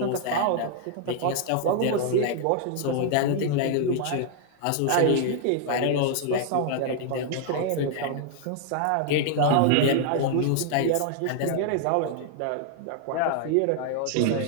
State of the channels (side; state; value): both; different; correlation 0.00